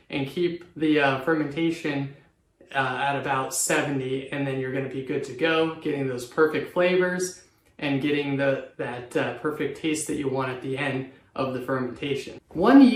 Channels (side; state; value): both; identical; correlation 1.00